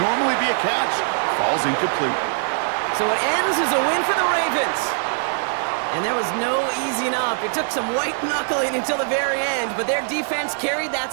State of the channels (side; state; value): left; silent; 64 dB below the other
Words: normally be a catch falls incomplete. So it ends as a win for the Ravens. And there was no easing up. It took some white knuckling until the very end, but their defense carried that